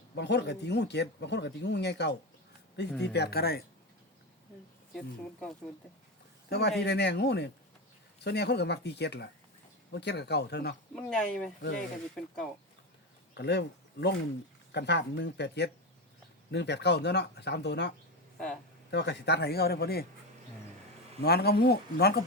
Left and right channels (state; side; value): normal; both; correlation 0.17